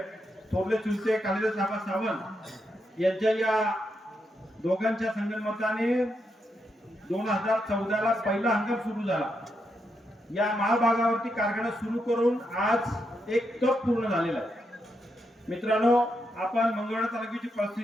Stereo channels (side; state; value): both; normal; correlation 0.82